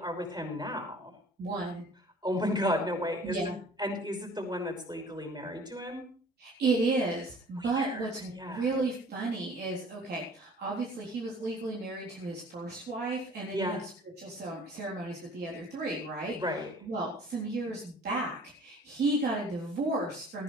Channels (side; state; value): both; normal; correlation 0.50